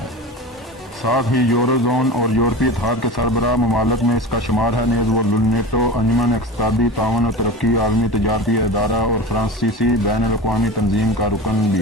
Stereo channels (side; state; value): both; normal; correlation 0.30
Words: ساتھ ہی یورو زون اور یورپی اتحاد کے سربراہ ممالک میں اس کا شمار ہے۔ نیز وہ نیٹو، انجمن اقتصادی تعاون و ترقی، عالمی تجارتی ادارہ اور فرانسیسی بین الاقوامی تنظیم کا رکن